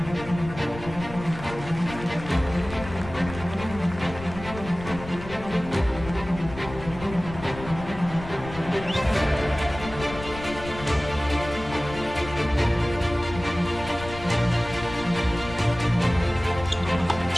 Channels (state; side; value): noise; left; rumble, 13 dB below the sound